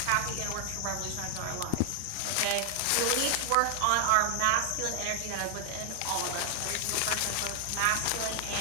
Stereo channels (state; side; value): different; both; correlation 0.00